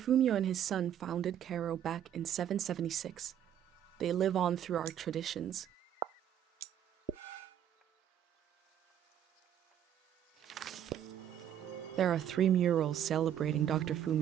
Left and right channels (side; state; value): left; quieter; 10.2 dB